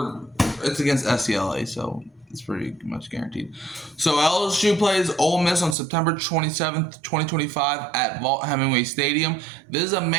it's against SCLA, so it's pretty much guaranteed. So LSU plays Ole Miss on September 27th, 2025 at Vaught-Hemingway Stadium. This is a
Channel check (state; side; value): drops out; left; at 5.8 s